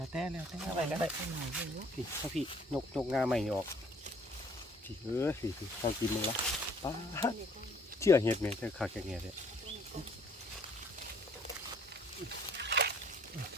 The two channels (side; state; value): both; normal; correlation 0.59